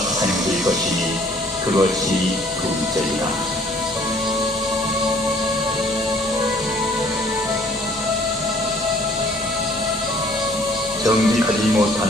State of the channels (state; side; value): normal; both; correlation 0.57